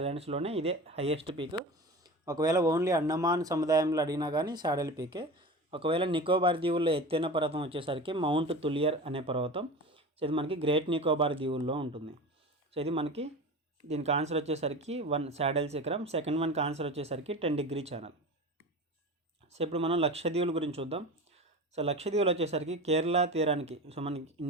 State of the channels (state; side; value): normal; both; correlation 0.31